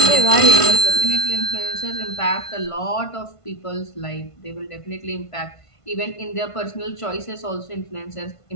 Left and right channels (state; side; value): late; right; 1.5 ms